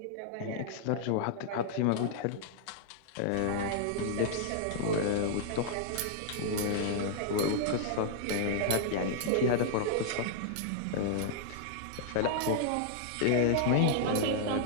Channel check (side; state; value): both; different; correlation -0.01